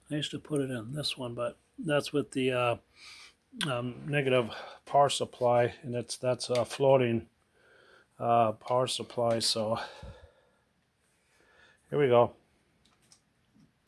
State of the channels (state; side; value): identical; both; correlation 1.00